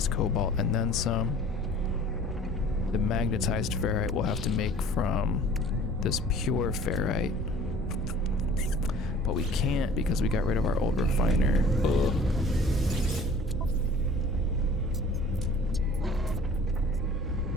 cobalt and then some. The magnetized ferrite we'll have to make from this pure ferrite. But we can't because we got rid of our old refiner. Ugh.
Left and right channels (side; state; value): both; normal; correlation 0.48